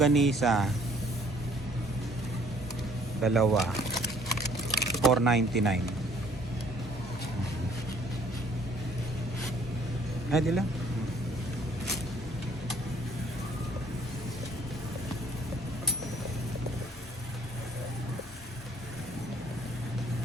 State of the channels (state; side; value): normal; both; correlation 0.60